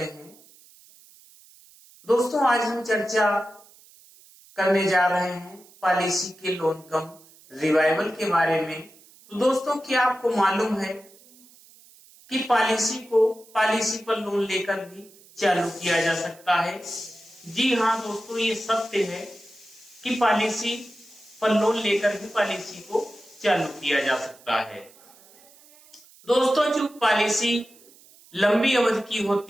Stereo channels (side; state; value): right; noise; hiss, 26 dB below the sound